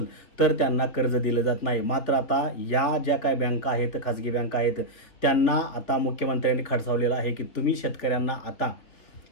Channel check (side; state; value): right; late; 3.6 ms